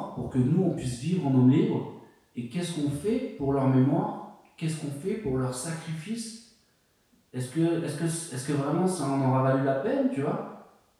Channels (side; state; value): both; identical; correlation 1.00